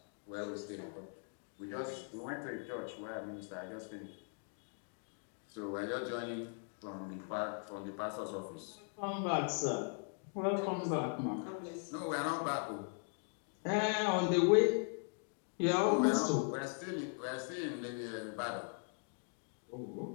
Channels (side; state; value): right; silent; 51 dB below the other